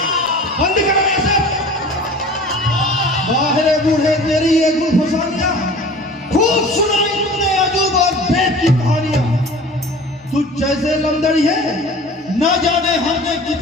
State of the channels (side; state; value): both; normal; correlation 0.42